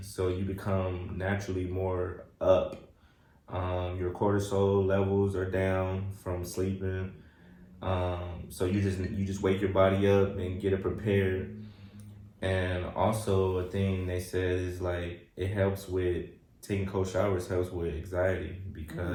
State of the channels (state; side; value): identical; both; correlation 1.00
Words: so you become naturally more up. Your cortisol levels are down from sleeping, so you just wake your body up and get it prepared. And also a thing they said is like it helps with taking cold showers helps with anxiety,